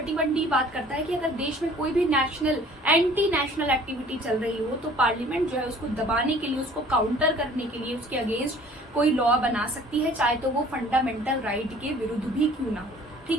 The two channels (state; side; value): normal; both; correlation 0.52